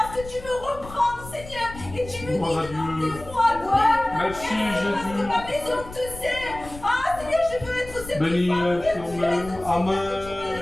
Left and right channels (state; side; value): noise; left; rumble, 15 dB below the sound